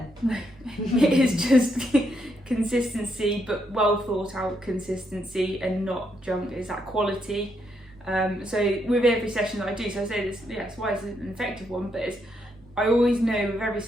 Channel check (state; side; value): normal; both; correlation 0.78